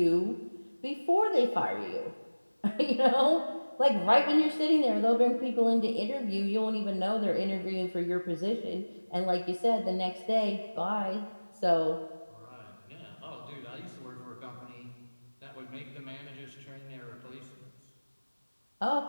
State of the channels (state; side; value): inverted; both; correlation -1.00